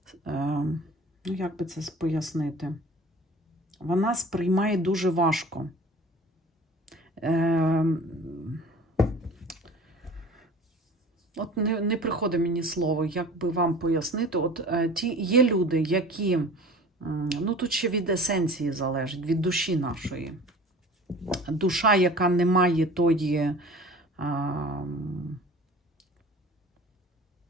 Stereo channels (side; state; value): both; normal; correlation 0.43